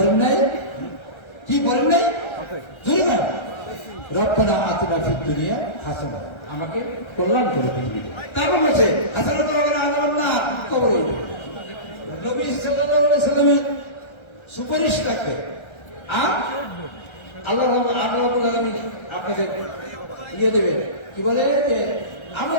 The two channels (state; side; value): late; right; 1.3 ms